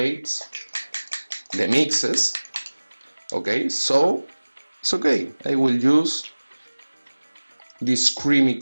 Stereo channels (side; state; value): both; inverted; correlation -1.00